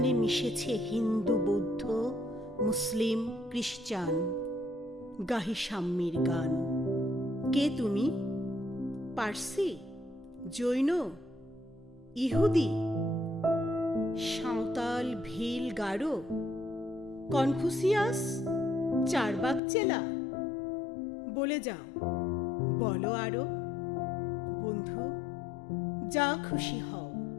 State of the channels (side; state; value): right; drops out; at 19.6 s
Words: মিশেছে হিন্দু, বৌদ্ধ, মুসলিম, খ্রিস্টান। গাহি সাম্যের গান। কে তুমি? পার্সি, জৈন, ইহুদি, সাঁওতাল, ভিল, গারো, কনফুসিয়াস, চারবাক চেলা? বলে যাও, বলো আরো। বন্ধু, যা খুশি হও,